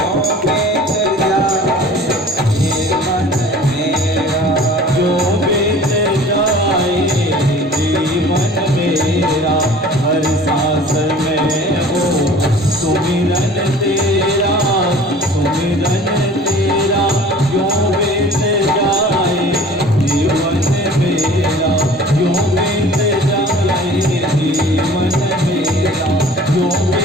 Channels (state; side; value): normal; both; correlation 0.45